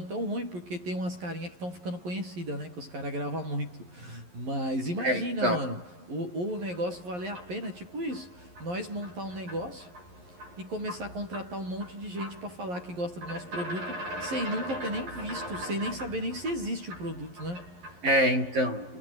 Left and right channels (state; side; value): late; left; 11 ms